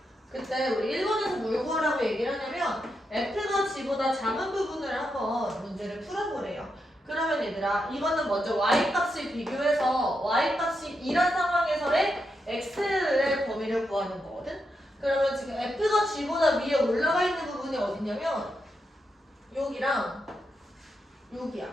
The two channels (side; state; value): both; normal; correlation 0.84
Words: 그때 우리 일본에서 뭘 구하라고 얘기를 하냐면 f가 g보다 작은 부분을 한번 문제를 풀어보래요. 그러면 얘들아, 이거는 먼저 y값을 비교해서 y값이 2란 상황에서의 x의 범위를 구하는 거거든. 그러면 지금 f가 g보다 위에 올라가 있는 부분이 어디냐면 여기랑 여기야.